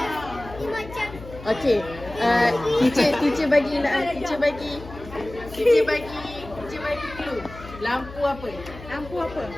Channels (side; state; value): left; noise; hum, 15 dB below the sound